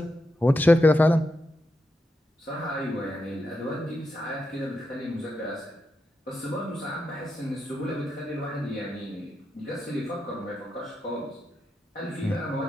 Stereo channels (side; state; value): both; normal; correlation 0.86